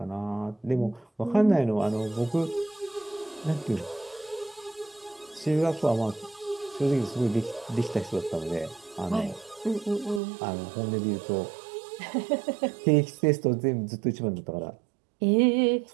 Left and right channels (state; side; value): drops out; left; at 10.2 s